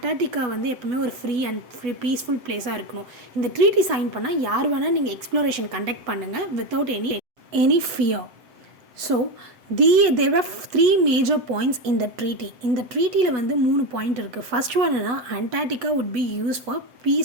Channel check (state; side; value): late; left; 8.1 ms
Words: வந்து எப்பவுமே ஒரு ஃப்ரீ பீஸ்ஃபுல் பிளேஸாக இருக்கணும். இந்த ட்ரீட்டி சைன் பண்ணால் யார் வேணால் நீங்கள் எக்ஸ்ப்ளோரேஷன் கண்டக்ட் பண்ணுங்கள் without any fear. So there were 3 major points in the treaty. இந்த ட்ரீட்டியில் வந்து 3 பாயிண்ட் இருக்குது. ஃபர்ஸ்ட் ஒன் என்னன்னா Antarctica would be used for